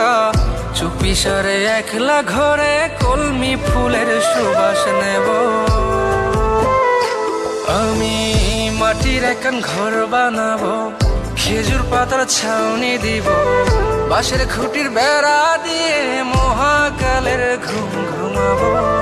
চুপি সারে একলা ঘরে কলমি ফুলের সুবাস নেব। আমি মাটির এখন ঘর বানাবো, খেজুর পাতার ছাউনি দিব, বাঁশের খুঁটির বেড়া দিয়ে মহাকালের ঘুম ঘুমাবো।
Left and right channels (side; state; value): both; identical; correlation 1.00